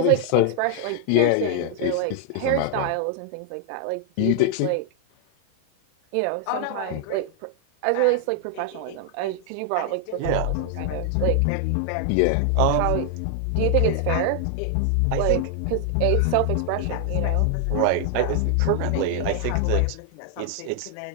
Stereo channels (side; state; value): both; different; correlation 0.00